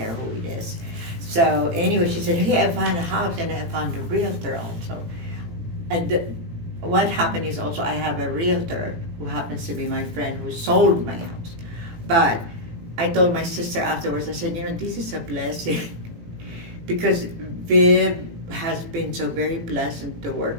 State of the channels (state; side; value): late; left; 18 ms